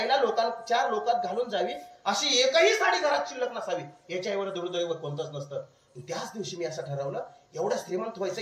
4 लोकात घालून जावी अशी एकही साडी घरात शिल्लक नसावी, याच्या एवढं दुर्दैव कोणतंच नसतं. त्याच दिवशी मी असं ठरवलं, एवढं श्रीमंत व्हायचं,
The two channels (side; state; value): both; identical; correlation 1.00